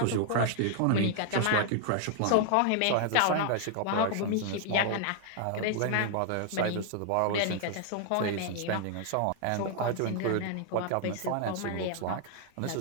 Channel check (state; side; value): different; both; correlation 0.00